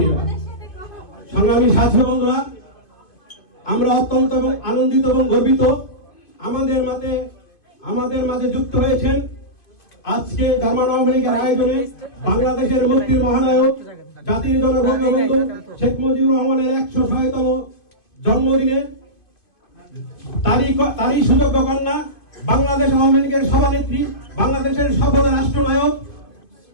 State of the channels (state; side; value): late; right; 2.6 ms